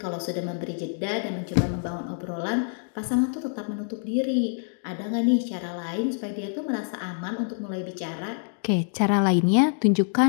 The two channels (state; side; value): silent; right; digital silence